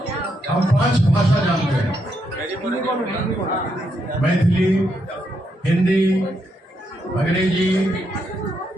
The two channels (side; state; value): both; normal; correlation 0.79